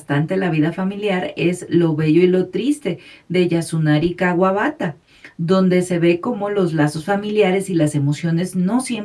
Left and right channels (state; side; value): identical; both; correlation 1.00